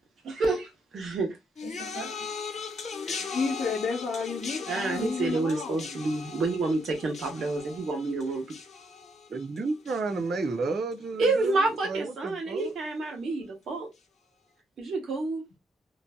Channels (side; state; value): both; normal; correlation 0.74